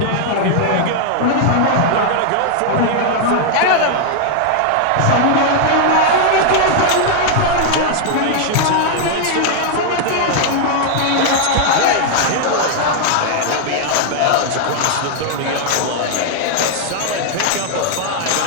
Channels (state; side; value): different; both; correlation 0.00